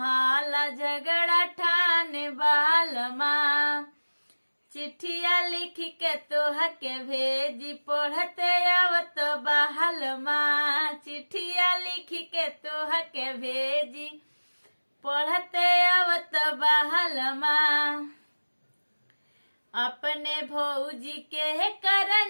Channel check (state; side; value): inverted; both; correlation -1.00